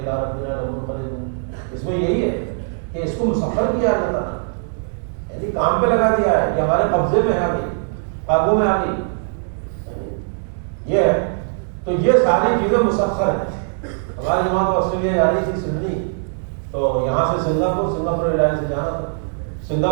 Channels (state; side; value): silent; left; digital silence